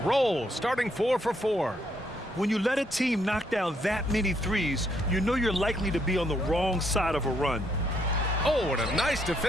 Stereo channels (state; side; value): normal; both; correlation 0.73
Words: starting 4 for 4. When you let a team knock down that many threes, you know you're likely to be on the wrong side of a run. Oh, and a nice